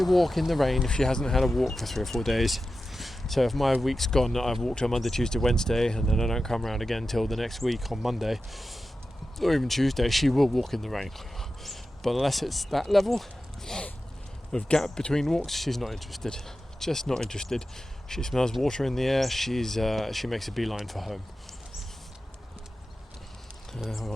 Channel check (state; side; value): normal; both; correlation 0.93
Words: walk in the rain if she hasn't had a walk for 3 or 4 days. So if my week's gone, that I've walked on Monday, Tuesday, Wednesday, and then I don't come around again till the next week on Monday, or even Tuesday, she will walk in the rain. But unless it's that level of gap between walks, she's not interested. Just not interested. She smells water in the air. She makes a beeline for home.